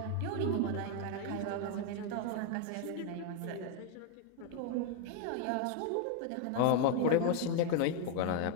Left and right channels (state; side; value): different; both; correlation 0.01